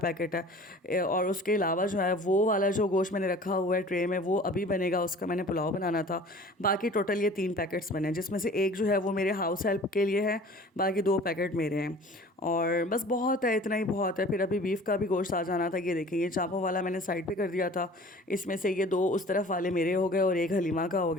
है और उसके अलावा जो है वो वाला जो गोश्त मैंने रखा हुआ है ट्रे में, वो अभी बनेगा, उसका मैंने पुलाव बनाना था। बाकी टोटल ये 3 पैकेट्स बने हैं, जिसमें से एक जो है वो मेरे हाउस हेल्प के लिए है, बाकी 2 पैकेट मेरे हैं। और बस बहुत है, इतना ही बहुत है। फिर अभी बीफ का भी गोश्त आ जाना था। ये देखिए, ये चांपों वाला मैंने साइड पे कर दिया था। इसमें से ये 2 उस तरफ वाले मेरे हो गए और एक हलीमा का हो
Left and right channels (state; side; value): normal; both; correlation 0.45